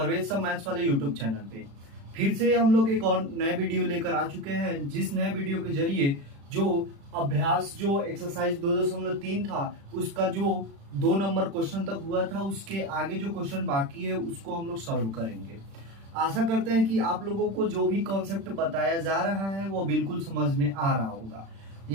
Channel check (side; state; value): left; late; 36 ms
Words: सर मैथ्स वाले यूट्यूब चैनल पे। फिर से हम लोग एक और नए वीडियो लेकर आ चुके हैं, जिस नए वीडियो के जरिए जो अभ्यास जो एक्सरसाइज 2.3 था उसका जो 2 नंबर क्वेश्चन तक हुआ था, उसके आगे जो क्वेश्चन बाकी है उसको हम लोग सॉल्व करेंगे। आशा करते हैं कि आप लोगों को जो भी कॉन्सेप्ट बताया जा रहा है वो बिल्कुल समझ में आ रहा होगा।